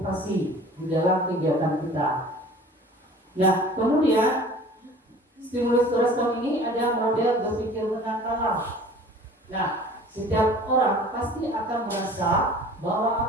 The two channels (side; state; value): both; normal; correlation 0.45